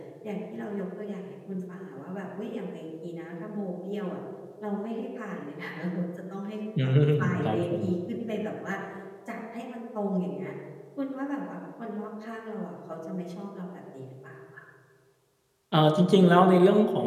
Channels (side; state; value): both; identical; correlation 1.00